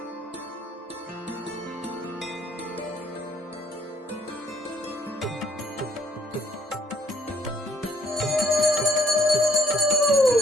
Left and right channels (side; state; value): both; normal; correlation 0.64